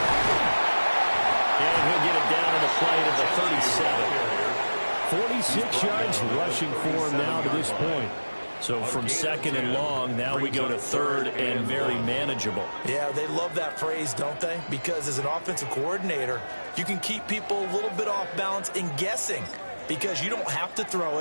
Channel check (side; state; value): both; inverted; correlation -1.00